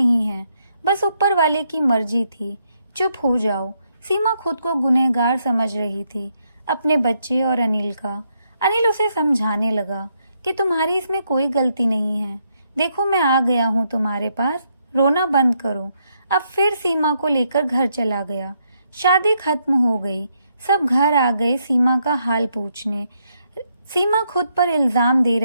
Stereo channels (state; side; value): inverted; both; correlation -0.77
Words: हैं, बस ऊपर वाले की मर्जी थी, चुप हो जाओ। सीमा खुद को गुनहगार समझ रही थी, अपने बच्चे और अनिल का। अनिल उसे समझाने लगा कि तुम्हारी इसमें कोई गलती नहीं है। देखो मैं आ गया हूँ तुम्हारे पास, रोना बंद करो। अब फिर सीमा को लेकर घर चला गया। शादी खत्म हो गई। सब घर आ गए सीमा का हाल पूछने। सीमा खुद पर इल्जाम दे